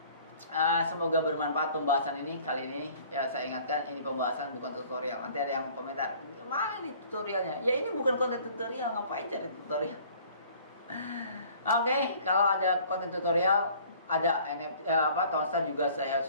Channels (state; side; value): inverted; both; correlation -0.53